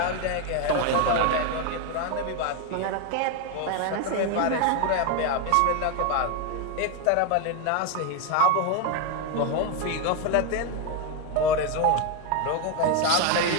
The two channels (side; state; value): both; different; correlation 0.01